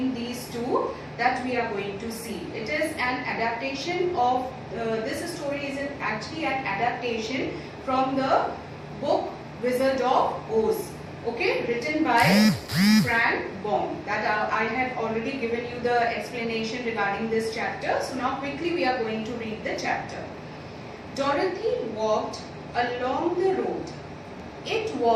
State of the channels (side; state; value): both; identical; correlation 1.00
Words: these two, that we are going to see. It is an adaptation of this story is actually an adaptation from the book Wizard of Oz. Okay, written by Frank Baum. That I have already given you the explanation regarding this chapter. So now quickly we are going to read the chapter. Dorothy walked along the road. It